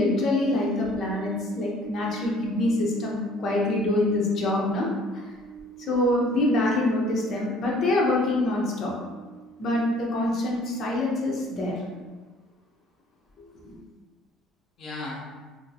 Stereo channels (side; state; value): both; normal; correlation 0.55